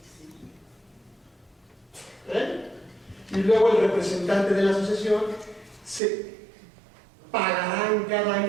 Y luego el representante de la sucesión se pagará en cada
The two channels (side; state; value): left; drops out; at 6.0 s